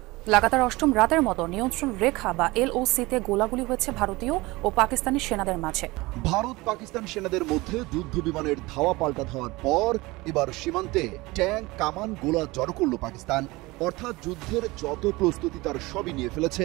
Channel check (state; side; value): quieter; left; 21.9 dB